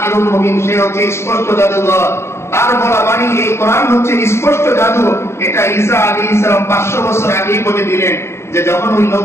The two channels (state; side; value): late; right; 0.13 ms